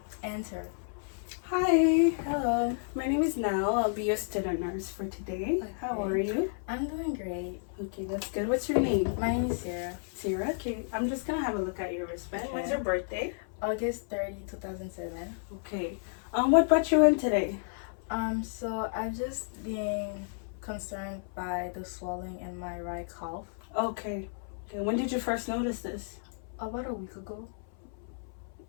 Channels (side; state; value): right; silent; 57 dB below the other